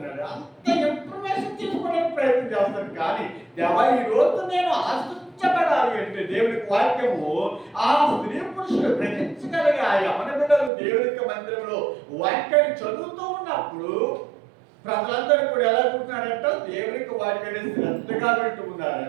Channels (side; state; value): left; drops out; at 10.7 s